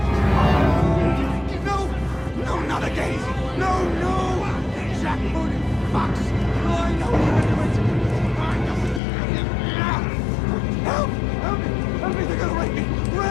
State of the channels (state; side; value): drops out; right; at 9.0 s